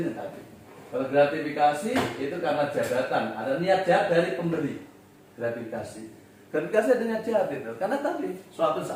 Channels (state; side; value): identical; both; correlation 1.00